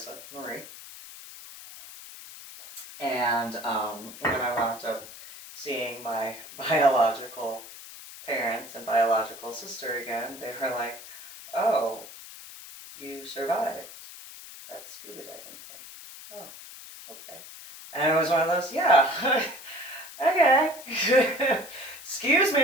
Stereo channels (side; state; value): left; noise; hiss, 15 dB below the sound